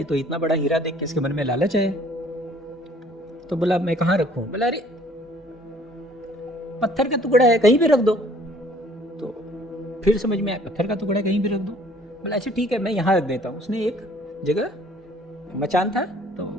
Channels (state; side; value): normal; both; correlation 0.56